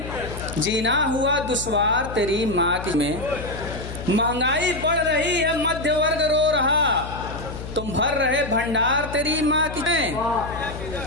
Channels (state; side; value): noise; left; hum, 10 dB below the sound